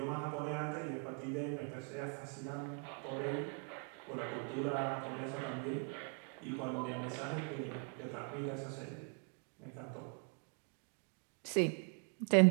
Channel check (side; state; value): left; quieter; 39.6 dB